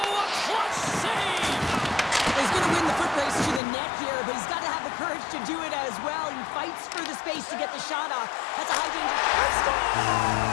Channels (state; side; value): drops out; right; at 3.6 s